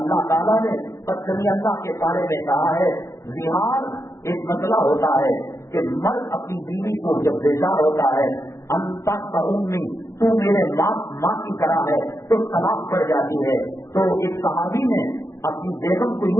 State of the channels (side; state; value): right; late; 0.14 ms